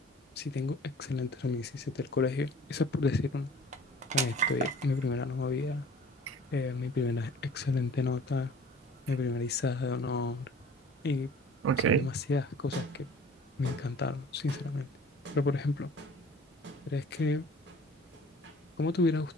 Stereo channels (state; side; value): normal; both; correlation 0.47